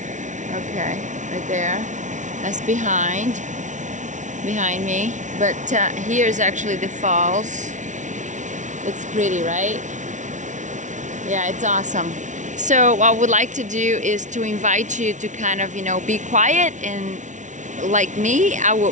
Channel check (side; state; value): left; late; 0.36 ms